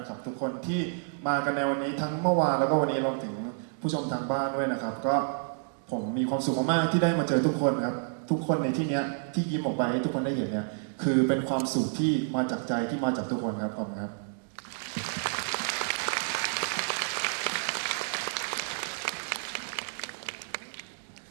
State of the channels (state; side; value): silent; left; digital silence